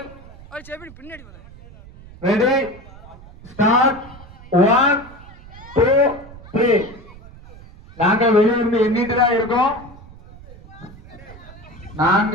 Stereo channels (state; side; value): noise; right; rumble, 19 dB below the sound